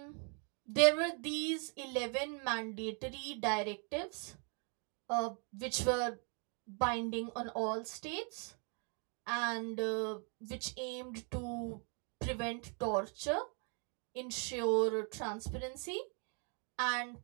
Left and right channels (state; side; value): quieter; left; 38.7 dB